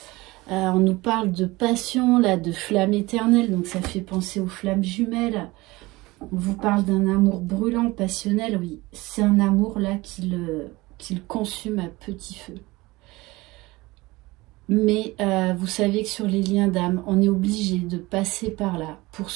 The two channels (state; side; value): quieter; left; 21.2 dB